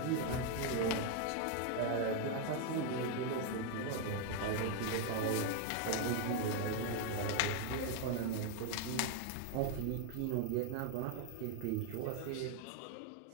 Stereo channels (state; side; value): different; both; correlation 0.01